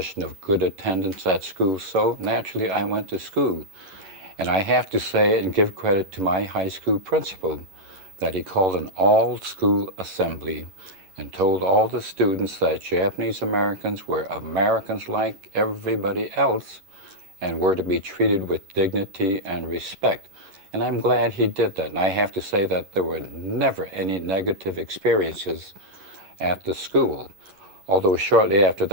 of good attendance at school, so naturally I went to school. And I have to say and give credit to my high school principal that he called an all-school assembly and told all the students that Japanese Americans were Americans like everybody else and were to be treated with dignity and respect. And I'm glad he did that. And I have to say that there were never any negative experiences at the school. Although shortly after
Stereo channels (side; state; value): left; late; 11 ms